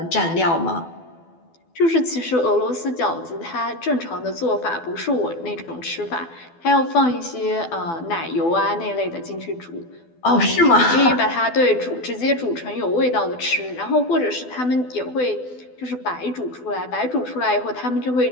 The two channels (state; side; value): late; right; 12 ms